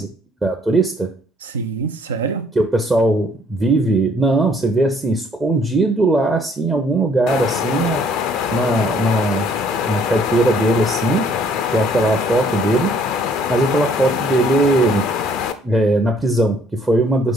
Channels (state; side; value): normal; both; correlation 0.62